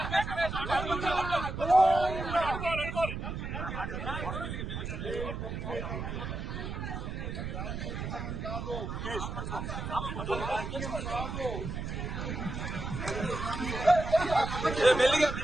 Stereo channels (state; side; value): noise; right; rumble, 5 dB below the sound